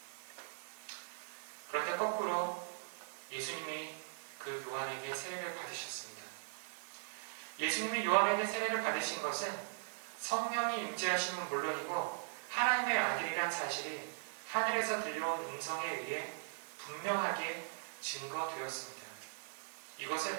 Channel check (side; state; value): left; silent; digital silence